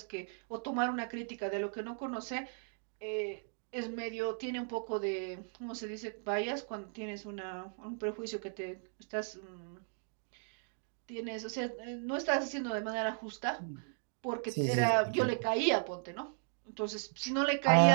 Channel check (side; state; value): left; silent; 53 dB below the other